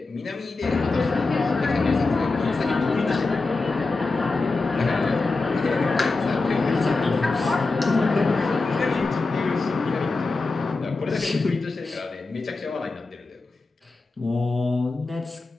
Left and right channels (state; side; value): quieter; right; 3.6 dB